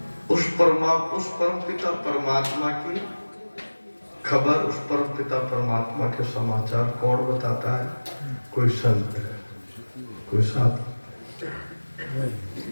उस परम पिता परमात्मा की खबर, उस परम पिता परमात्मा के समाचार कौन बताता है? कोई संत, कोई साधु।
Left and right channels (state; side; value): inverted; both; correlation -1.00